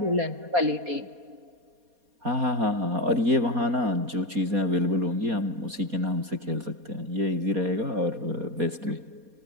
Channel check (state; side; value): late; left; 4.2 ms